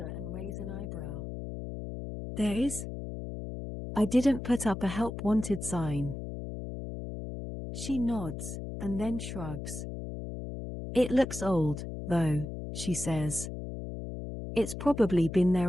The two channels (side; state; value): left; noise; hum, 7 dB below the sound